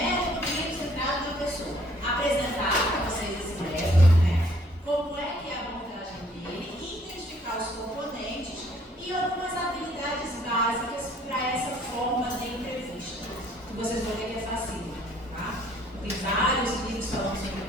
clínico centrado na pessoa? Apresentar para vocês esse método, né? Como é que é a abordagem dele, identificar os componentes e algumas habilidades básicas para essa forma de entrevista. Que vocês vão ver que é fácil, tá? Tem vários livros falando sobre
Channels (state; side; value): normal; both; correlation 0.61